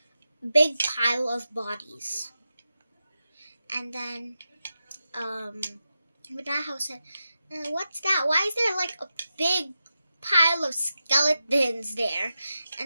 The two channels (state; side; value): inverted; both; correlation -0.90